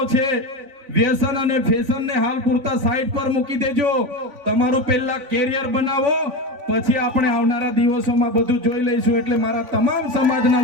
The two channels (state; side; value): late; left; 3.5 ms